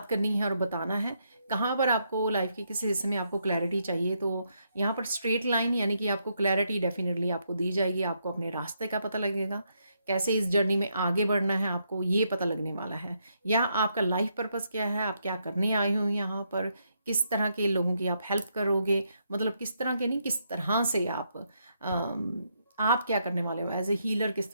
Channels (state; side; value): inverted; both; correlation -0.78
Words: करनी है और बताना है, कहाँ पर आपको लाइफ के किस हिस्से में आपको क्लैरिटी चाहिए, तो यहाँ पर स्ट्रेट लाइन यानी कि आपको क्लैरिटी डेफिनेटली आपको दी जाएगी। आपको अपने रास्ते का पता लगेगा, कैसे इस जर्नी में आगे बढ़ना है आपको ये पता लगने वाला है, या आपका लाइफ पर्पस क्या है, आप क्या करने आए हो यहाँ पर, किस तरह के लोगों की आप हेल्प करोगे, मतलब किस तरह के नहीं, किस तरह से आप क्या करने वाले हो एज ए हीलर, किस